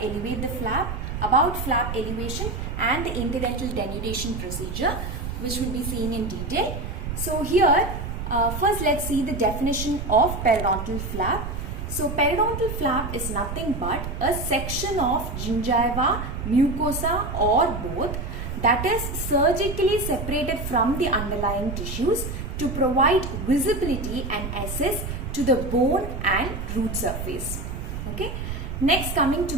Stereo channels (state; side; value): noise; right; rumble, 6 dB below the sound